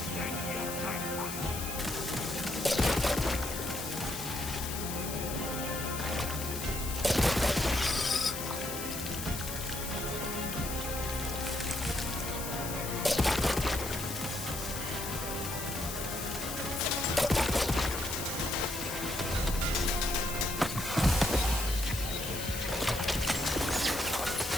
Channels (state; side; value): noise; left; hiss, 6 dB below the sound